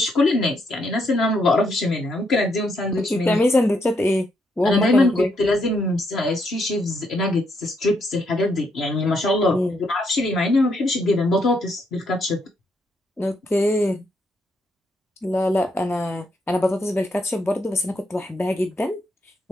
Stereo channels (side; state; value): both; normal; correlation 0.76